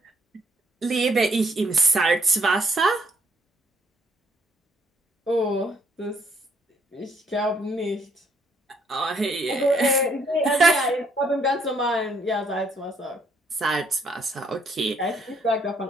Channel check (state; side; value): normal; both; correlation 0.69